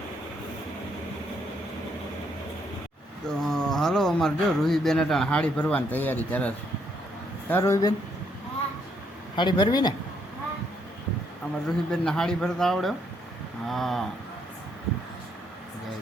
તો હાલો અમારે જો રૂહીબેન અટાણ હાડી ભરવાની તૈયારી કરે છે. હા રૂહીબેન, હાડી ભરવી ને? અમારે રૂહીબેનને હાડી ભરતા આવડે? હા.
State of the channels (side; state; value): both; normal; correlation 0.73